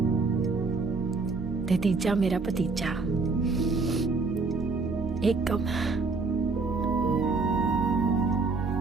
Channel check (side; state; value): left; quieter; 4.0 dB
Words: ਤੇ ਤੀਜਾ ਮੇਰਾ ਭਤੀਜਾ ਏਕਮ।